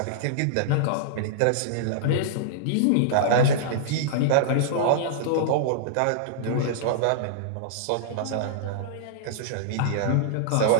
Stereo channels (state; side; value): different; both; correlation -0.02